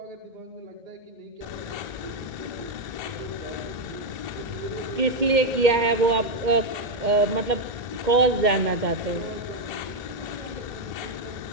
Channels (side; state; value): left; late; 2.1 ms